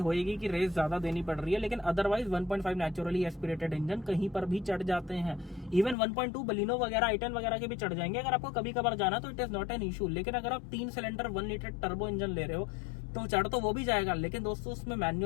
कि रेस ज्यादा देनी पड़ रही है, लेकिन अदरवाइज 1.5 नेचुरली एस्पिरेटेड इंजन कहीं पर भी चढ़ जाते हैं। इवन 1.2 बलिनो वगैरह, i10 वगैरह के भी चढ़ जाएंगे अगर आपको कभी कभार जाना, तो it is not an issue. लेकिन अगर आप 3 सिलेंडर 1 लीटर टर्बो इंजन ले रहे हो तो चढ़ तो वो भी जाएगा, लेकिन दोस्तों उसमें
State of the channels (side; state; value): right; drops out; at 6.0 s